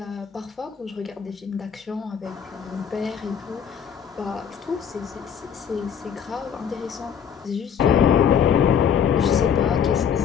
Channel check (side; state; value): right; quieter; 7.8 dB